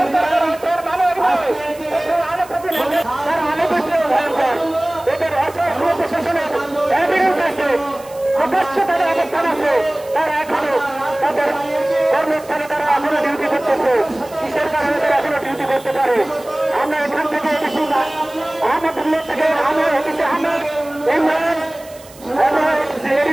প্রকাশ্য তাদের অবস্থান আছে, তারা এখনো তাদের কর্মস্থানে তারা এখনো ডিউটি করতেছে। কিসের কারণে তারা এখনো ডিউটি করতে পারে? আমরা এখান থেকে আহমদুল্লাহ থেকে আহমেদ হচ্ছে আহমেদ ইমরান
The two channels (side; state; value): right; noise; hiss, 22 dB below the sound